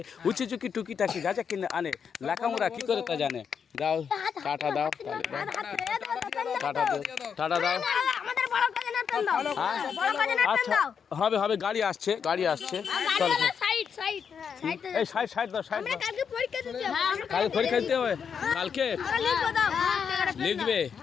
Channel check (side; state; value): right; quieter; 6.9 dB